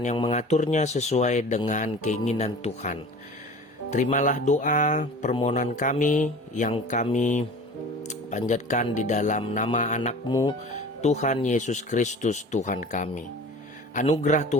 yang mengaturnya sesuai dengan keinginan Tuhan. Terimalah doa permohonan kami yang kami panjatkan di dalam nama anak-Mu, Tuhan Yesus Kristus Tuhan kami. Anugerah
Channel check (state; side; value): normal; both; correlation 0.40